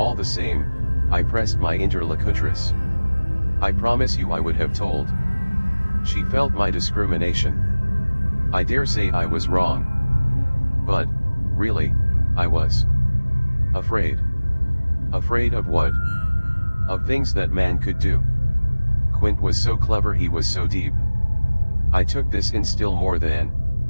the same, I pressed my interlocutress. I promise you I would have told. She felt my discrimination. I dare say I was wrong. But, really, I was afraid. Afraid of what? Of things that man could do. Quint was so clever, he was so deep. I took this in still more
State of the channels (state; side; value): inverted; both; correlation -1.00